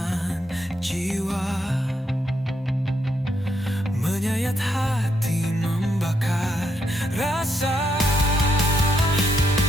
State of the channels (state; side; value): normal; both; correlation 0.78